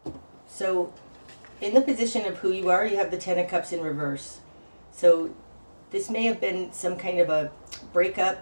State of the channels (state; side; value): inverted; both; correlation -1.00